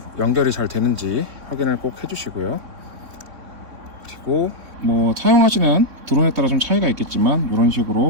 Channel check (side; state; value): left; late; 3.6 ms